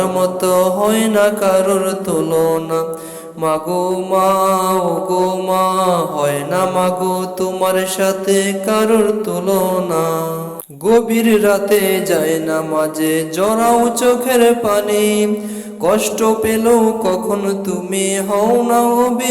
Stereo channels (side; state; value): both; identical; correlation 1.00